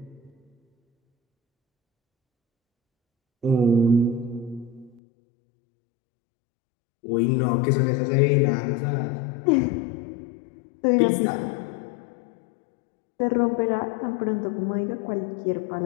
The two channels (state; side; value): drops out; right; at 5.0 s